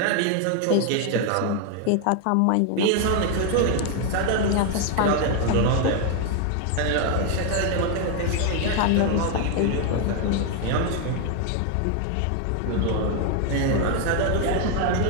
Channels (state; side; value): different; both; correlation 0.01